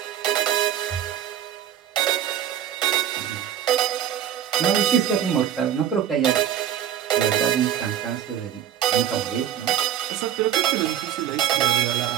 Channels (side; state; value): left; quieter; 10.2 dB